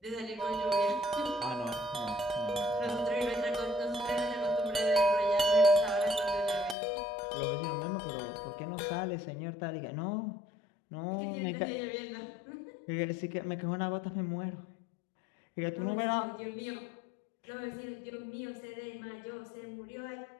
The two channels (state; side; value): drops out; right; at 6.8 s